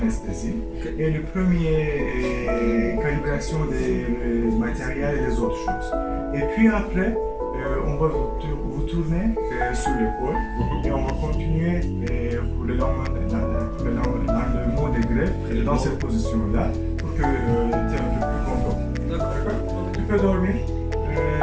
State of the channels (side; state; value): both; identical; correlation 1.00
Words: Et le premier calibration des matériels et des autres choses. Et puis après, on va vous tourner sur l'épaule et on va continuer pour le mot des greffes dans cette position-là pour que tu es un peu plus content. D'accord. Tu peux dormir.